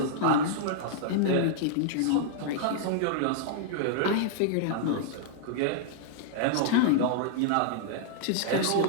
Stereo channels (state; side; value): different; both; correlation -0.01